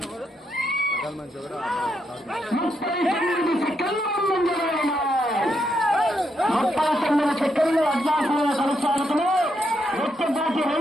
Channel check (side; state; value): both; normal; correlation 0.79